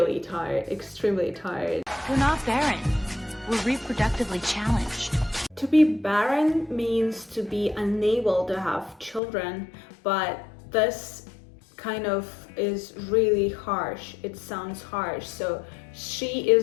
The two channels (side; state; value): right; drops out; at 9.2 s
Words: tired, extremely tired. We're not barren. We're reproductively challenged. To be barren means to be unable to have children, but this kind of is really harsh. It sounds harsh. So she